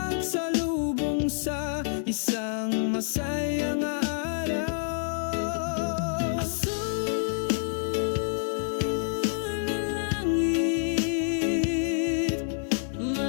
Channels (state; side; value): silent; right; digital silence